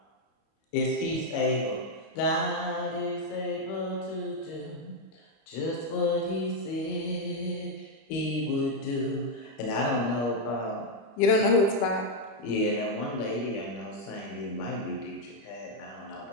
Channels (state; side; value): late; right; 25 ms